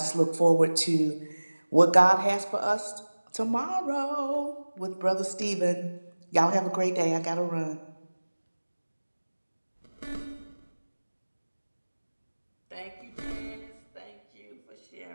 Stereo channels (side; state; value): both; inverted; correlation -1.00